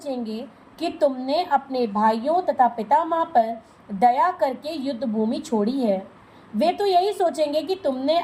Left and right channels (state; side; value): identical; both; correlation 1.00